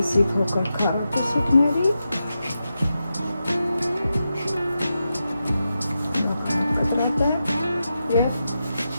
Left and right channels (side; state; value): both; inverted; correlation -0.89